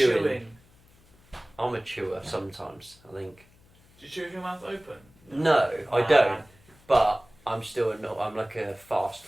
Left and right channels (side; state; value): left; noise; hum, 29 dB below the sound